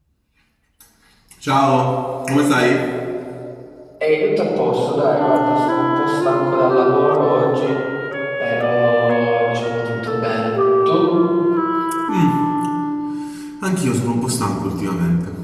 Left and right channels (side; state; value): both; identical; correlation 1.00